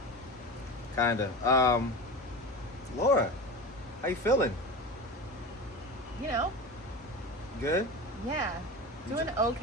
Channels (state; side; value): normal; both; correlation 0.28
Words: Kinda. Laura, how you feeling? You know, Good? yeah, doing